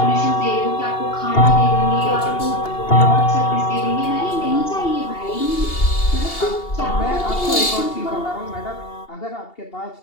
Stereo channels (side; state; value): right; late; 2.8 ms